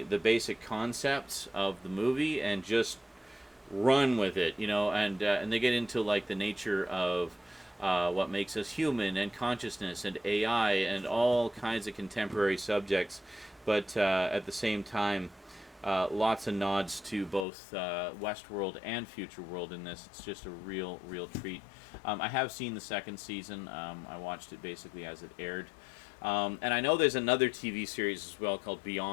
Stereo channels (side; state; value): right; drops out; at 17.4 s